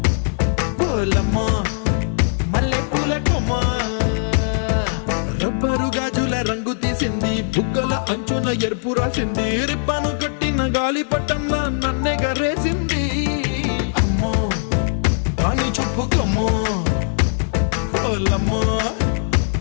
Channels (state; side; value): silent; right; digital silence